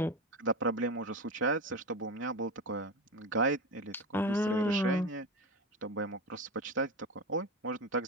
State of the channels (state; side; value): normal; both; correlation 0.21